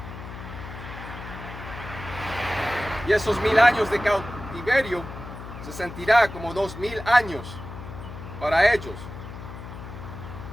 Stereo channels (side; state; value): left; noise; hum, 12 dB below the sound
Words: Y esos 1000 años de cautiverio se sentirá como 2000 años para ellos.